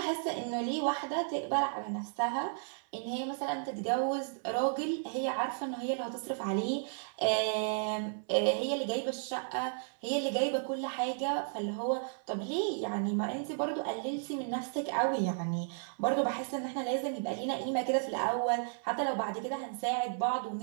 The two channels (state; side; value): silent; left; 55 dB below the other